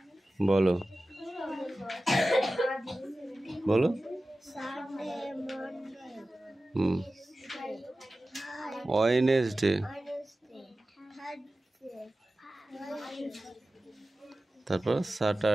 বলো, বলো। ওয়েডনেসডে, তারপর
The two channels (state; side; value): normal; both; correlation 0.95